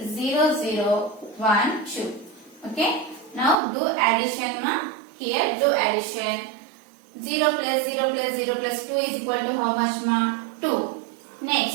Okay. Now do addition, ma. Here do addition. 0 plus 0 plus 0 plus 2 is equal to how much, ma? 2.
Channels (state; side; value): drops out; left; at 3.6 s